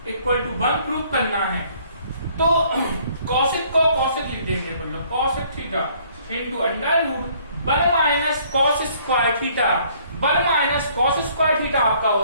equal to 1 prove करना है। तो कॉसेक को कॉसेक लिख देंगे, बोलो cosec theta into under root 1 minus cos square theta. 1 minus cos square theta आपका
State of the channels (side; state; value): both; inverted; correlation -0.61